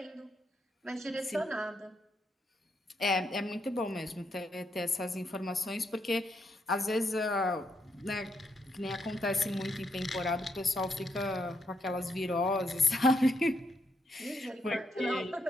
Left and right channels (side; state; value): both; normal; correlation 0.78